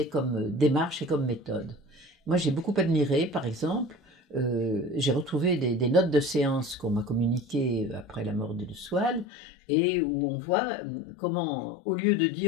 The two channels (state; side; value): drops out; right; at 9.2 s